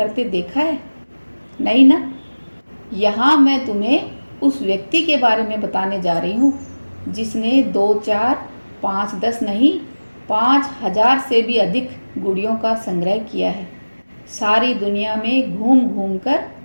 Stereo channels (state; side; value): inverted; both; correlation -1.00